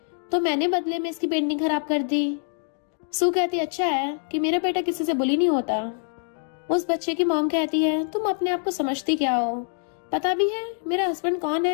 तो मैंने बदले में इसकी पेंटिंग खराब कर दी। सू कहती अच्छा है कि मेरा बेटा किसी से बुली नहीं होता। उस बच्चे की मॉम कहती है तुम अपने आप को समझती क्या हो, पता भी है मेरा हस्बैंड कौन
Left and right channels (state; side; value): silent; right; digital silence